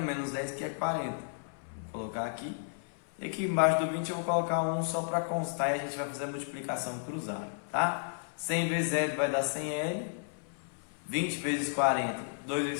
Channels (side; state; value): right; silent; 56 dB below the other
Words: menos 10, que é 40. Vou colocar aqui. E aqui embaixo do 20 eu vou colocar 1 só para constar e a gente vai fazer a multiplicação cruzada, tá? 100 vezes L vai dar 100L. 20 vezes 40, 2